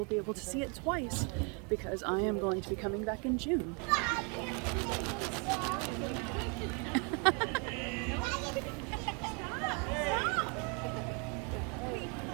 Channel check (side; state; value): left; quieter; 34.9 dB